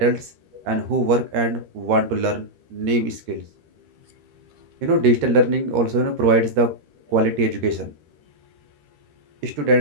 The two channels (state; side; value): late; left; 13 ms